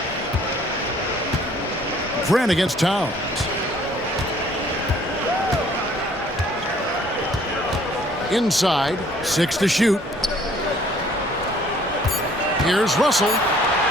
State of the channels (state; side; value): normal; both; correlation 0.58